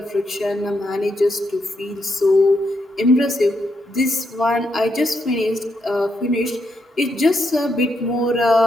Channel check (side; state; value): both; normal; correlation 0.80